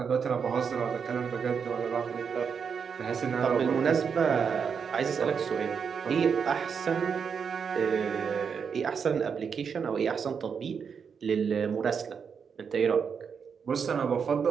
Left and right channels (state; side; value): quieter; left; 6.5 dB